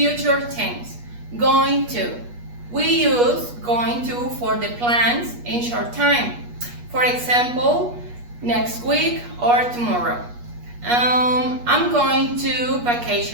tense. Going to. We use going to for the plans in short time. For example, next week or tomorrow. I'm going to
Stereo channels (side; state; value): left; late; 8.3 ms